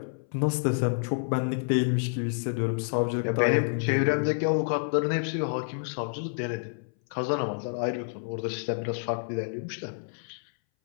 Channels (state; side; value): silent; right; 59 dB below the other